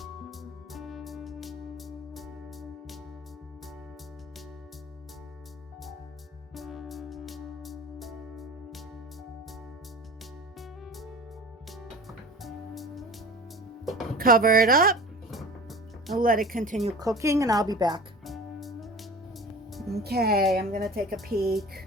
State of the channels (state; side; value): normal; both; correlation 0.38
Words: Cover it up and let it continue cooking, and I'll be back. Okay, I'm gonna take a